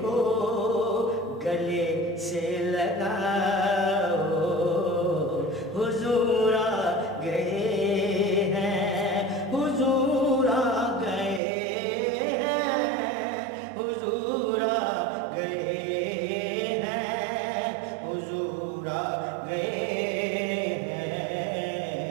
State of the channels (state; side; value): drops out; left; at 11.4 s